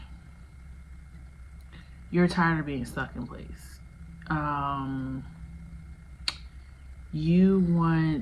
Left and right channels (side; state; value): both; identical; correlation 1.00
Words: you're tired of being stuck in place. You want